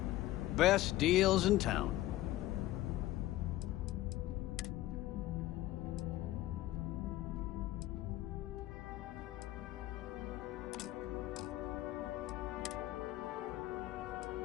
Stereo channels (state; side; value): quieter; right; 15.6 dB